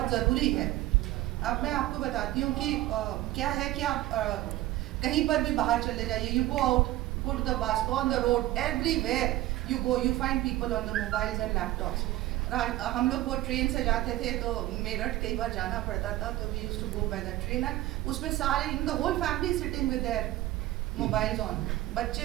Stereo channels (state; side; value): quieter; left; 16.1 dB